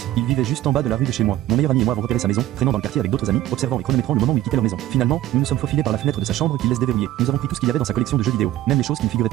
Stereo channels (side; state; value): left; quieter; 13.8 dB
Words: Il vivait juste en bas de la rue de chez moi. Mon meilleur ami et moi avons repéré sa maison, traînant dans le quartier avec d'autres amis, observant et chronométrant le moment où il quittait leur maison. Finalement, nous nous sommes faufilés par la fenêtre de sa chambre qu'il laisse déverrouiller. Nous avons pris tout ce qu'il y avait dans sa collection de jeux vidéo, même les choses qui ne figuraient